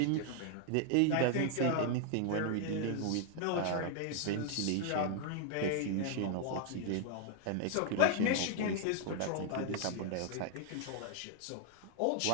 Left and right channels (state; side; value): different; both; correlation 0.00